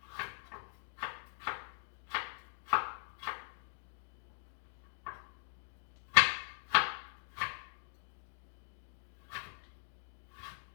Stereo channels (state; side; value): silent; right; 50 dB below the other